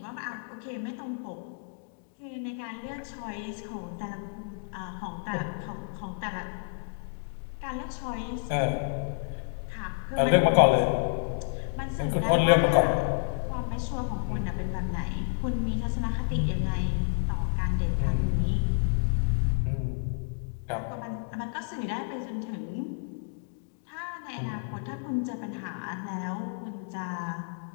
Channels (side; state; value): right; silent; digital silence